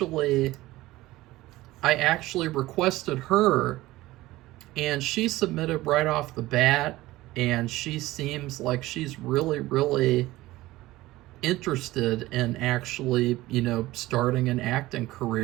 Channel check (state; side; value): quieter; left; 17.8 dB